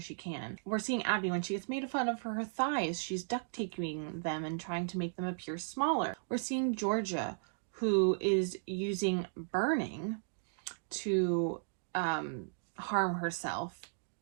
can. We're seeing Abby when she gets made fun of for her thighs. She's duct taping them and trying to make them appear smaller. We're seeing Georgia, who is using burning to harm herself,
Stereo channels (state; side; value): silent; left; digital silence